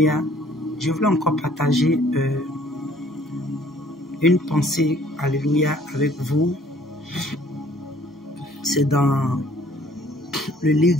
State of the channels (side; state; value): both; normal; correlation 0.58